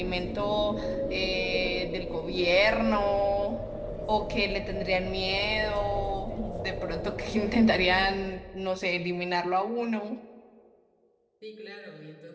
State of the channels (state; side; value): identical; both; correlation 1.00